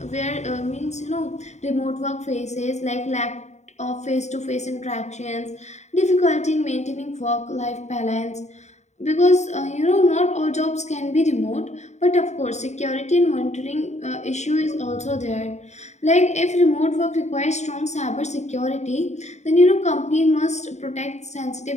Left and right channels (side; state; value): right; late; 0.33 ms